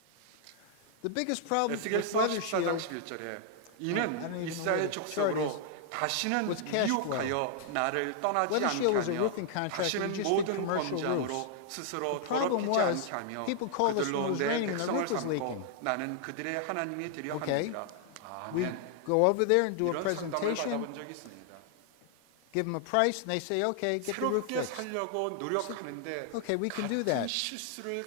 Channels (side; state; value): both; different; correlation 0.00